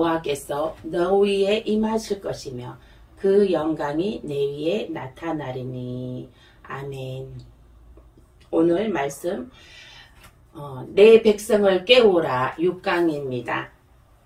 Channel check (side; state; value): both; identical; correlation 1.00